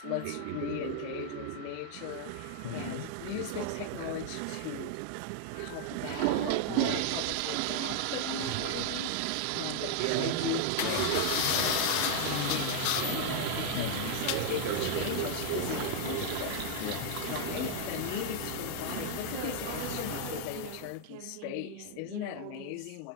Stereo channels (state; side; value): different; both; correlation 0.00